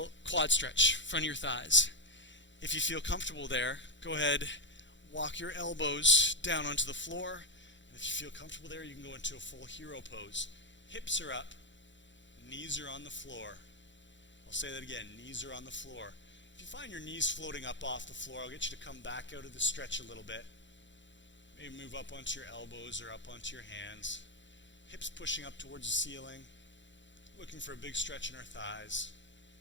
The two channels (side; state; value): right; late; 0.54 ms